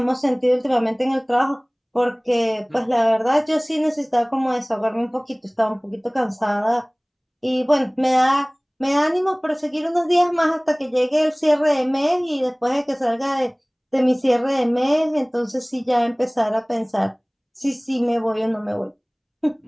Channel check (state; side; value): identical; both; correlation 1.00